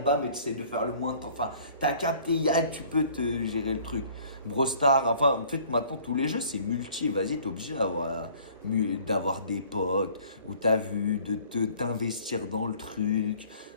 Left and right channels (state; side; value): inverted; both; correlation -0.54